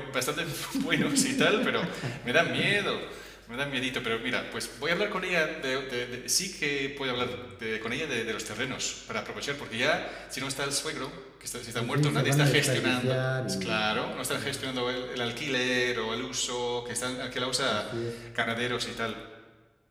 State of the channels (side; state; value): both; identical; correlation 1.00